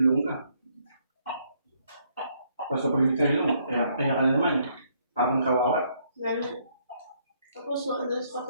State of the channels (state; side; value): inverted; both; correlation -0.70